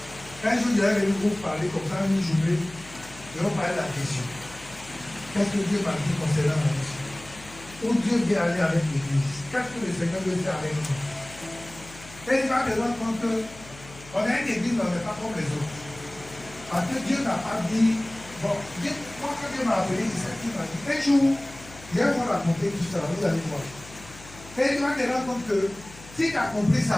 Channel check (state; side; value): noise; left; hum, 19 dB below the sound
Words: Un jour, je vais venir vous parler comme ça, une journée. Je vais vous parler de la vision. Qu'est-ce que Dieu m'a dit concernant la vision? Où Dieu veut aller avec l'Église? Qu'est-ce que le Seigneur veut faire avec nous? Et il va te rendre compte qu'on a une église, mais on n'est pas comme les autres. Parce que Dieu n'a pas dit, bon, moi quand Dieu m'a appelé, c'est ça qu'il m'a dit. Un jour, je vais vous raconter tout ça, vous allez voir. Et il va te rendre compte que si tu as compris